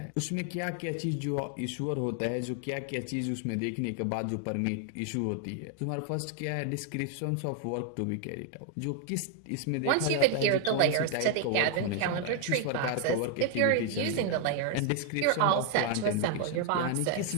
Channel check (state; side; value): different; both; correlation 0.00